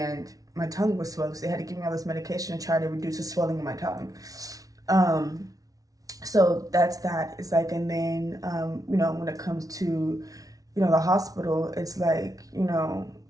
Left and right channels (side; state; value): left; late; 0.18 ms